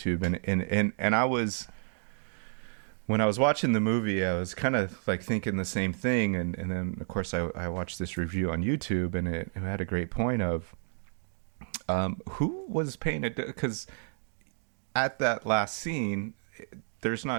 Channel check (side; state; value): left; silent; digital silence